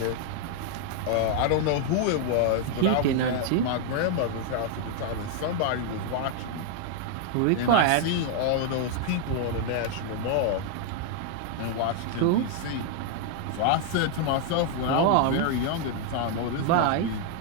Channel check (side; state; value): both; different; correlation 0.00